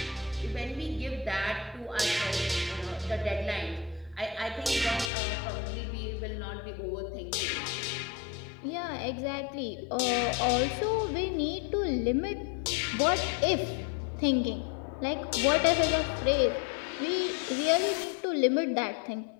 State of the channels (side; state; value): right; drops out; at 5.1 s